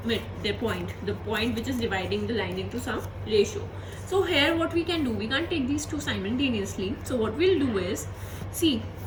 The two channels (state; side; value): identical; both; correlation 1.00